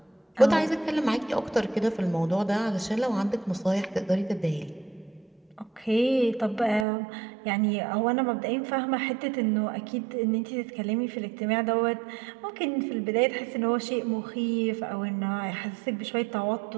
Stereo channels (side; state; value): left; drops out; at 6.9 s